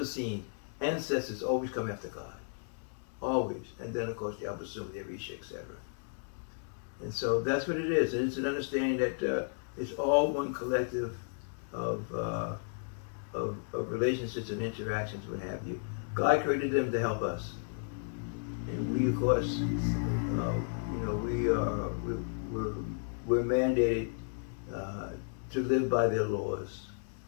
seen, ancestors always come after God. Always. And then, of course, the Abasum, the Arisha, etc. And so that's what it is. And it's an understanding that it's all one collective of relationships and interactions, what have you. God created them to help us. And we, of course, we're mandated to live by their laws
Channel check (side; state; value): right; silent; digital silence